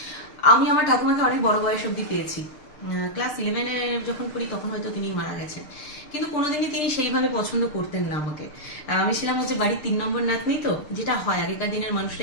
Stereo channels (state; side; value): late; right; 6.6 ms